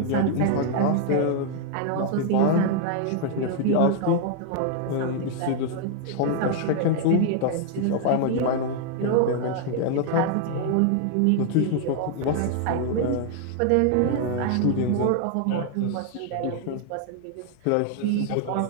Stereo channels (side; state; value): both; different; correlation 0.00